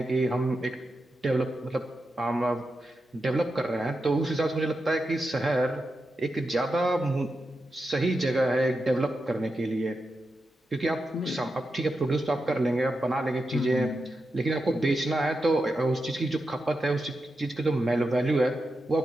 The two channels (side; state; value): both; normal; correlation 0.88